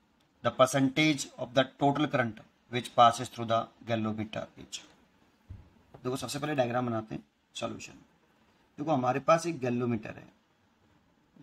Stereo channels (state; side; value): identical; both; correlation 1.00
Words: The percentage of the total current which passes through the galvanometer is. देखो, सबसे पहले diagram बनाते हैं, solution. देखो, हमारे पास एक गैल्वेनोमीटर है,